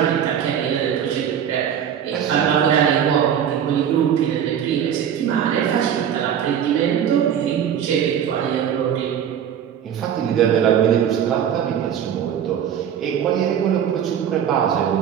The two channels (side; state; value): left; quieter; 9.0 dB